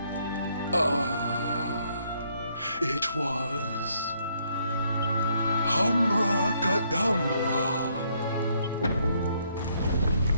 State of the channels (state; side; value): inverted; both; correlation -0.70